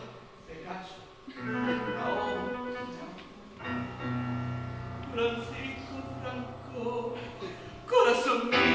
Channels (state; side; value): identical; both; correlation 1.00